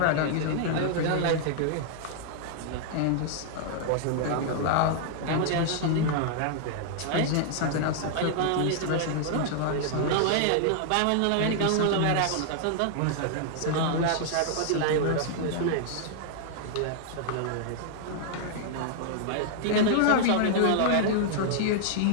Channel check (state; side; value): different; both; correlation -0.01